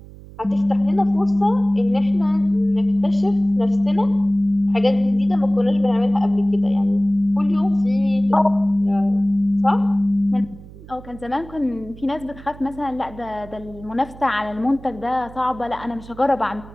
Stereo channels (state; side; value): noise; right; hum, 18 dB below the sound